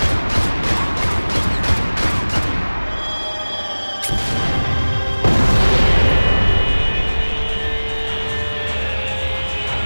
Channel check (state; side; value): inverted; both; correlation -1.00